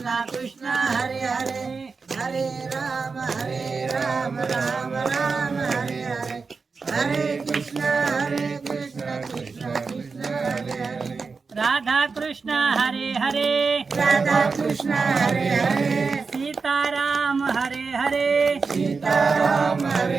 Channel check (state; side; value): quieter; left; 4.7 dB